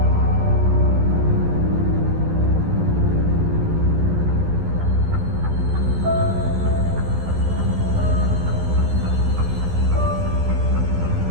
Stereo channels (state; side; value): late; left; 12 ms